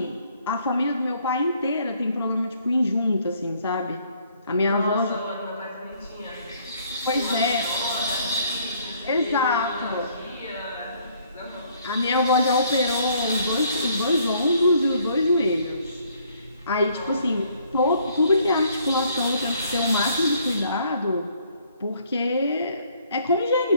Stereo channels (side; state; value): both; inverted; correlation -0.64